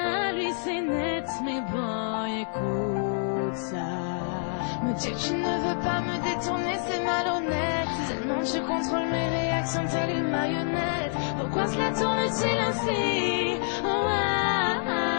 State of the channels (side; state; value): right; silent; digital silence